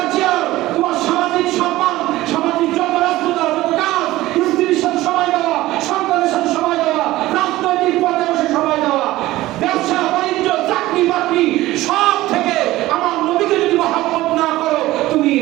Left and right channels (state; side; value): quieter; left; 17.0 dB